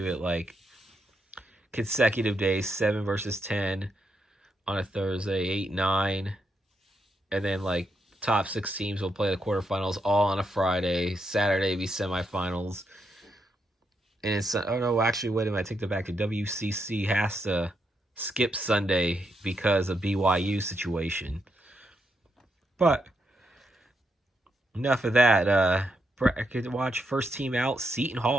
it like consecutive days, 7 versus 10 on a Thursday, 8, 9, and then like top 6 teams will play the quarterfinals all on a Friday. Saturday be semifinals. And it's, oh no, actually, wait a minute, I take that back. The WCC has to skip Sunday because of BYU situation. But enough of that. Bracket watch, first team out, Seton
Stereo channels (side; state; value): both; normal; correlation 0.80